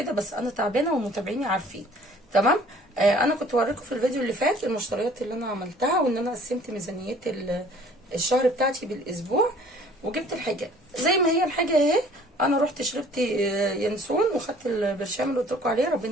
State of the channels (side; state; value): both; normal; correlation 0.53